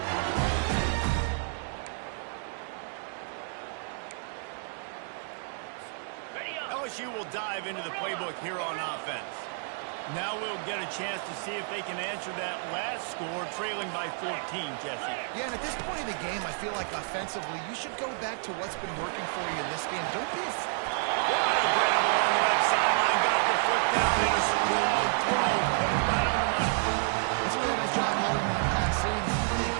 LSU will dive into the playbook here on offense. Now we'll get a chance to see if they can answer that last score, trailing by 14, Jesse. Yeah, and at this point in the game, I feel like offensively, you should go back to what's been working for you in this game. Don't be What a grab along the left sideline. Got the foot down in a strong throw. Put it right on the money. That's a really nice job holding that pass in. And you think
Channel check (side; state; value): left; silent; 58 dB below the other